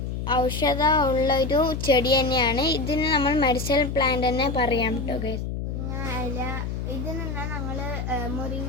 ഔഷധമുള്ളൊരു ചെടി തന്നെയാണ്. ഇതിന് നമ്മൾ മെഡിസിനൽ പ്ലാന്റ് തന്നെ പറയാം കേട്ടോ ഗൈസ്. മുരിങ്ങ ഇല. ഇതിൽ നിന്നാണ് ഞങ്ങൾ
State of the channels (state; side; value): noise; left; hum, 4 dB below the sound